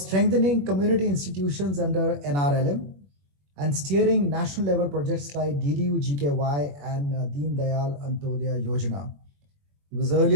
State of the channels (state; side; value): late; left; 21 ms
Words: community institutions under NRLM and steering national level projects like DDU GKY and Deen Dayal Antyodaya Yojana. He was